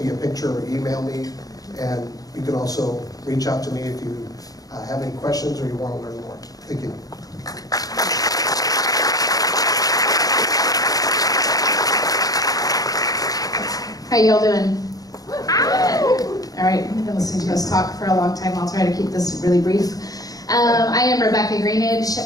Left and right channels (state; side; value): late; right; 0.18 ms